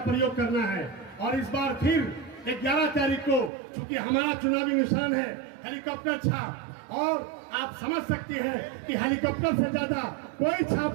प्रयोग करना है, और इस बार फिर 11 तारीख को, चूंकि हमारा चुनावी निशान है हेलीकॉप्टर छाप, और आप समझ सकते हैं कि हेलीकॉप्टर से ज्यादा कोई छाप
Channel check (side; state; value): left; drops out; at 3.5 s